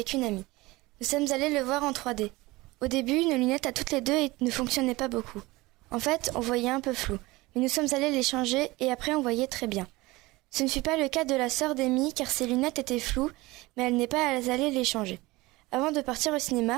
une amie. Nous sommes allés le voir en 3D. Au début, nos lunettes à toutes les deux ne fonctionnaient pas beaucoup. En fait, on voyait un peu flou. Mais nous sommes allés les changer et après on voyait très bien. Ce ne fut pas le cas de la sœur d'Amy car ses lunettes étaient floues, mais elle n'est pas allée les changer. Avant de partir au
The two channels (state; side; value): quieter; left; 21.1 dB